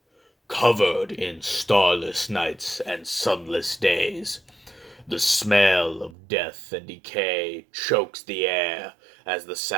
covered in starless nights and sunless days. The smell of death and decay chokes the air as the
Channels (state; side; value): drops out; left; at 6.2 s